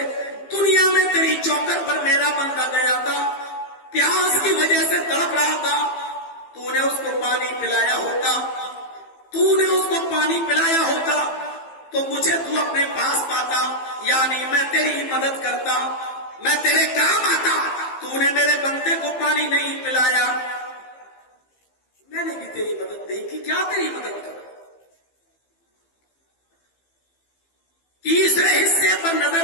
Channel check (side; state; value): right; late; 15 ms